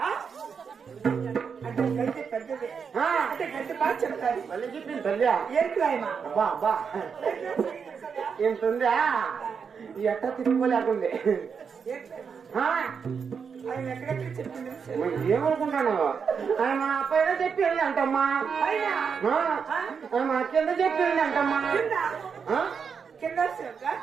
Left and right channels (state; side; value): quieter; left; 6.3 dB